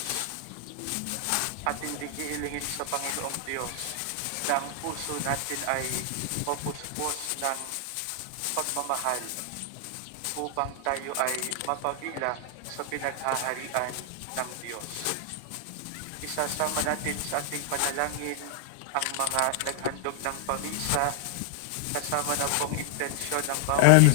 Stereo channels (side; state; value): both; different; correlation 0.00